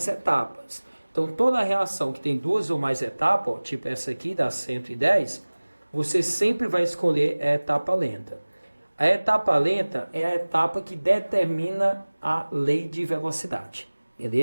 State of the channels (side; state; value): both; inverted; correlation -1.00